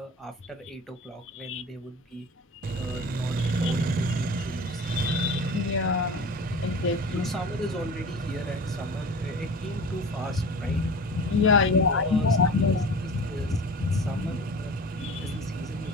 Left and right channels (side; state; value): both; normal; correlation 0.37